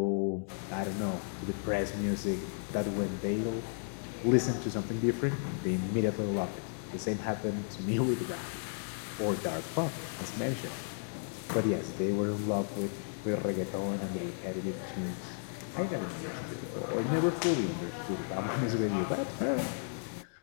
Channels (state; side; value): silent; right; digital silence